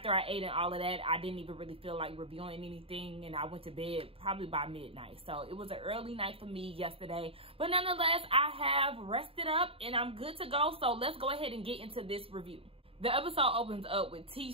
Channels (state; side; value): late; left; 0.27 ms